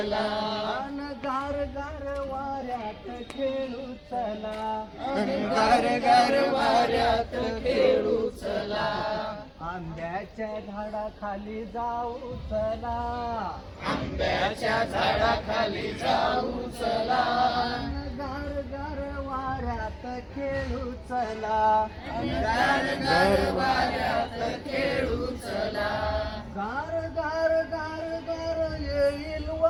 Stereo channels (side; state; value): both; identical; correlation 1.00